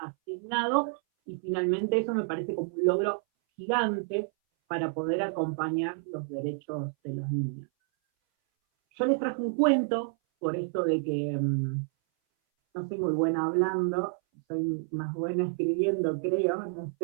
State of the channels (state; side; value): silent; left; 58 dB below the other